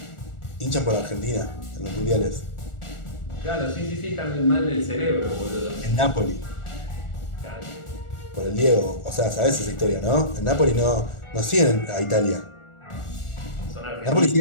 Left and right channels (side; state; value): right; late; 1.4 ms